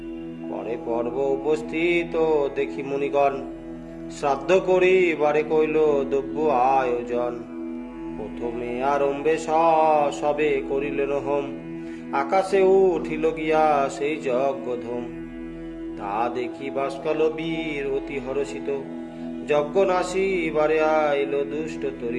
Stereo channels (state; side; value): identical; both; correlation 1.00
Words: পরে পর্ব উপস্থিত দেখি মুনিগণ, শ্রাদ্ধ করি বারে কইল দ্রব্য আয়োজন। প্রথমে আরম্ভে সবে করিলেন হোম, আকাশে উঠিল গিয়া সেই যজ্ঞধূম। তা দেখি বাসকল বীর অতি হরষিত, যজ্ঞ নাশি বারে আইল দুষ্ট